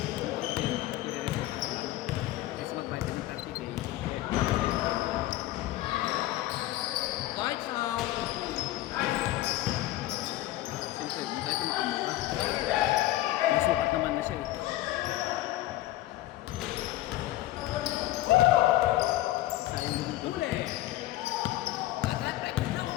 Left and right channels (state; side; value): quieter; right; 15.7 dB